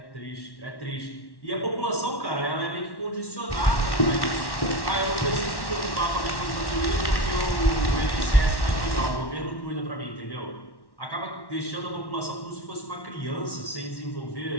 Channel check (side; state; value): right; late; 1.1 ms